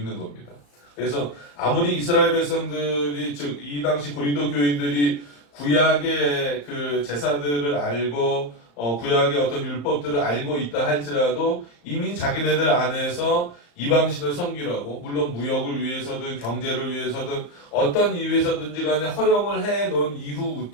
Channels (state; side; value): late; right; 34 ms